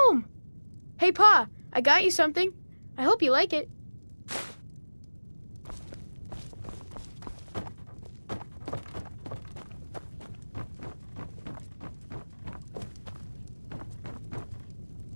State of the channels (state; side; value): inverted; both; correlation -1.00